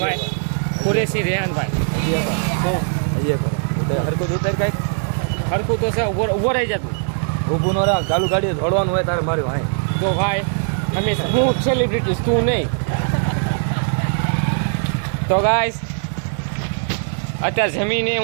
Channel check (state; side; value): silent; left; digital silence